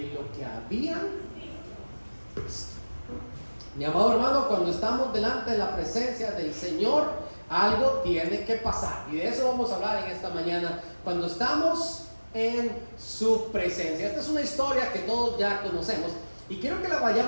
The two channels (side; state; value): both; inverted; correlation -1.00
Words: lo que habían visto. Mi amado hermano, cuando estamos delante de la presencia del Señor, algo tiene que pasar, y de eso vamos a hablar en esta mañana, cuando estamos en su presencia. Esta es una historia que todos ya conocemos, y quiero que la